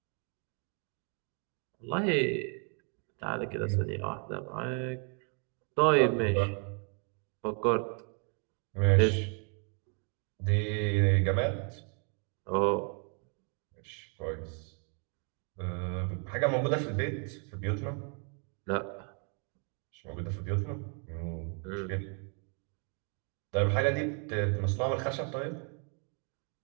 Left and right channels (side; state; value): left; quieter; 39.7 dB